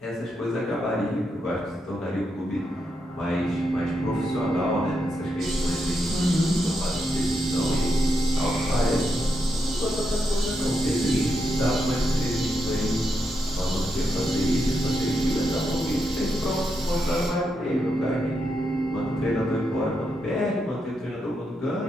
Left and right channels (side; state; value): both; normal; correlation 0.83